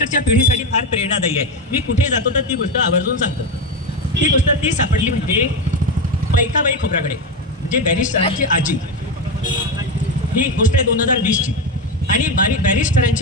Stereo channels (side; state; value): both; normal; correlation 0.14